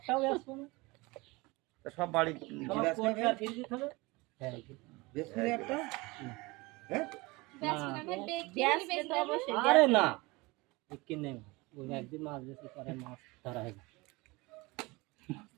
আসবো না তা সব বাড়ি সব গিলাস কোনটা খাবে? ফিরে দিতে হবে হ্যাঁ বেশ করে একটা হ্যাঁ গ্যাস তো অবশ্যই আরে না কি নেই ওই একদিন মাছ বেশি করে মাছ ধরা হয় না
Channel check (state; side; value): quieter; left; 23.7 dB